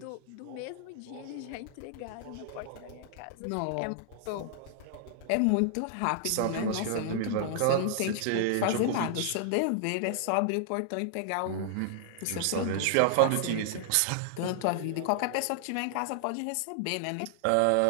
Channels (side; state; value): both; different; correlation 0.00